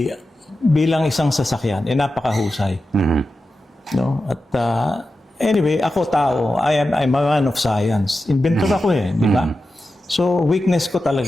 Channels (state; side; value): normal; both; correlation 0.92